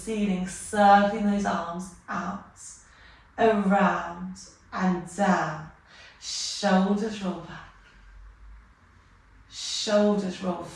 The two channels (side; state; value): both; identical; correlation 1.00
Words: circling those arms out, around and down. Shoulders roll back. shoulders roll